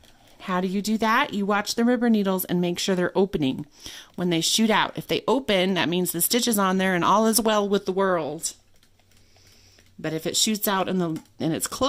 How do you do that? You watch the rubber needles and make sure they're opening when they shoot out. If they open, that means the stitch is on there and all is well with the world. But if it shoots out and it's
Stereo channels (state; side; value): identical; both; correlation 1.00